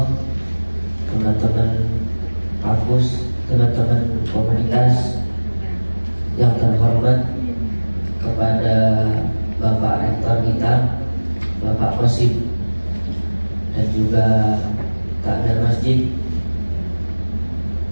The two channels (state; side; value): inverted; both; correlation -1.00